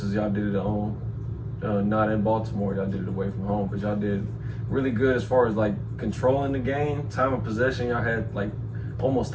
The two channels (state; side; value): identical; both; correlation 1.00